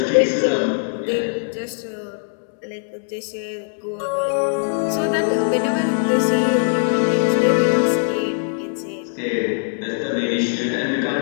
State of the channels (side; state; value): right; silent; digital silence